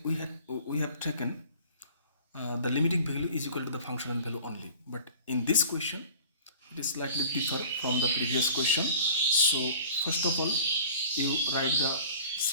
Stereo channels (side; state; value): both; inverted; correlation -0.45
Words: have taken the limiting value is equal to the functional value only. But in this question it is slightly different from the previous question. So first of all you write the